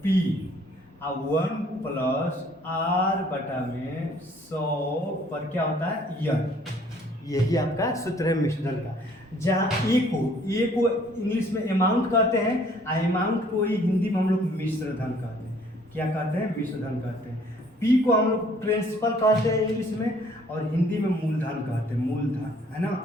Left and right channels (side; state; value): both; normal; correlation 0.59